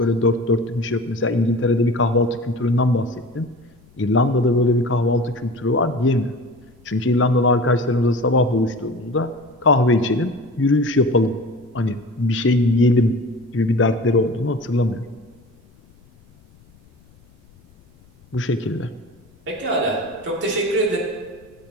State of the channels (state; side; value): noise; left; rumble, 29 dB below the sound